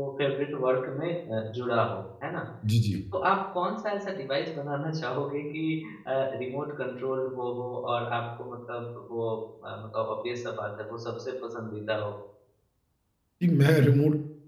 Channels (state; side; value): identical; both; correlation 1.00